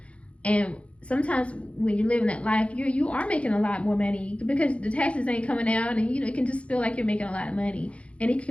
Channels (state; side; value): late; right; 0.062 ms